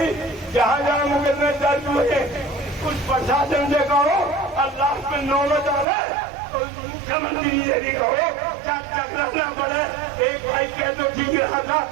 जहां जहां मुकदमे दर्ज हुए कुछ प्रशासन से कहो, और लास्ट में नौबत आवे तो मुख्यमंत्री से भी कहो, टकराना पड़े। एक भाई कह तो ठीक रहा था,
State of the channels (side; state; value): left; drops out; at 5.9 s